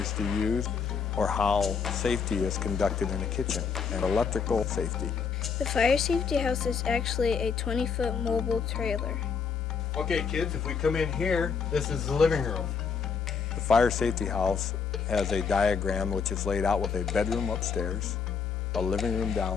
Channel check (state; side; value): quieter; right; 6.0 dB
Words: to use, or how safety is conducted in a kitchen, and electrical safety. The fire safety house is actually a 20-foot mobile trailer. Okay, kids, if we come in here, this is the living room. The fire safety house has a diagram which is laid out with a bedroom upstairs, a living room